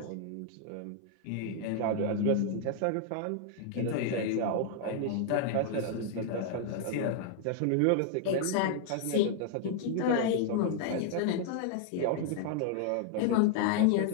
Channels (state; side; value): different; both; correlation 0.00